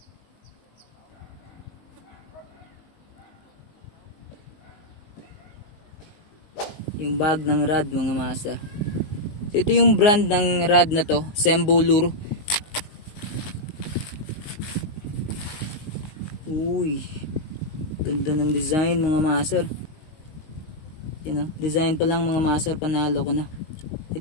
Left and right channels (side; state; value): right; late; 19 ms